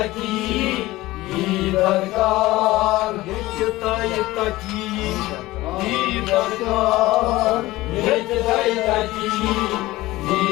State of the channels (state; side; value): quieter; right; 18.3 dB